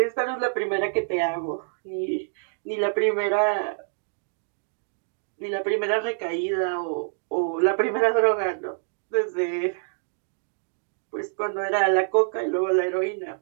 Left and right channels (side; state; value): left; silent; digital silence